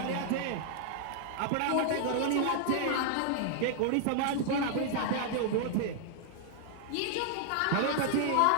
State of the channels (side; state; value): both; different; correlation -0.01